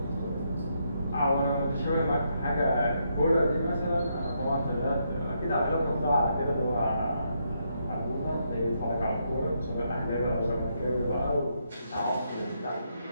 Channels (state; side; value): inverted; both; correlation -0.78